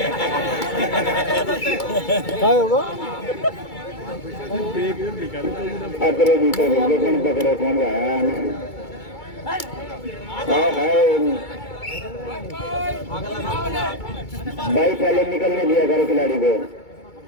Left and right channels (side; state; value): right; late; 2.3 ms